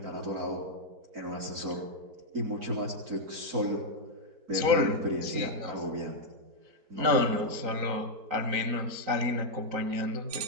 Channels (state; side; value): late; left; 3.9 ms